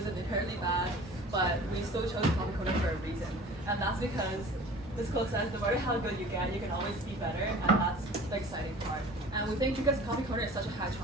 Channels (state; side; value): normal; both; correlation 0.44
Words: inherently bad, but we still chose Coffee Corner for a reason. And that's because this quote says, no matter how good you get, you can always be better, and that's the exciting part. And we think because Coffee Corner is such a high